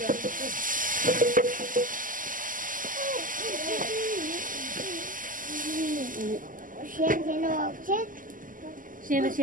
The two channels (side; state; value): left; late; 0.39 ms